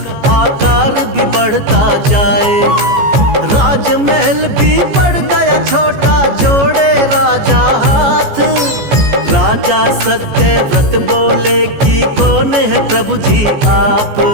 आकार भी बढ़ता जाए। राजमहल भी पड़ गया छोटा, जोड़े राजा हाथ। राजा सत्यव्रत बोले कि कौन है प्रभु जी आप।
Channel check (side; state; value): left; late; 14 ms